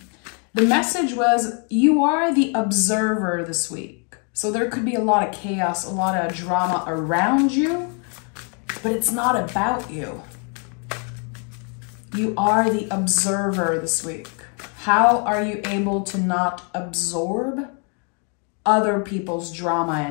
The message was, you are the observer this week. So there could be a lot of chaos, a lot of drama around you, but it's not about you. You are the observer this week. How are you able to not absorb other people's drama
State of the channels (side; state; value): right; quieter; 38.7 dB